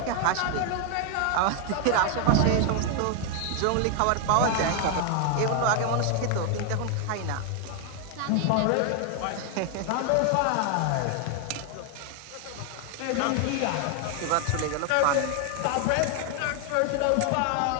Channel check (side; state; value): both; different; correlation 0.00